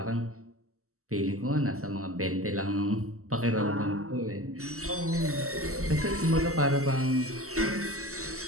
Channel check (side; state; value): left; late; 0.64 ms